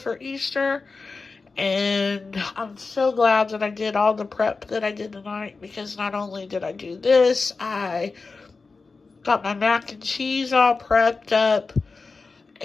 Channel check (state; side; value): quieter; right; 4.2 dB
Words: Easter. And I'm so glad that I did all the prep that I did tonight, because not only did I do this, I got my mac and cheese all prepped up,